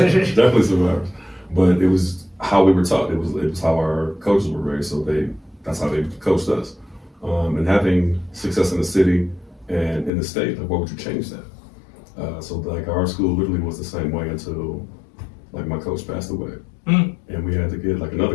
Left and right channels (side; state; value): right; drops out; at 10.1 s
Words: Definitely survivors. But it was how we were taught. It was how our coaches were raised. So that's how they coached us. And having success in the city and in the state, like, what would you change that? So like our school literally was the same way until like my coach passed away. And we had to get like